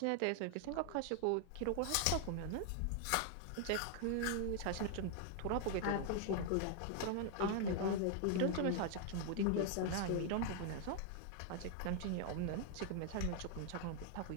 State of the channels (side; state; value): both; different; correlation 0.00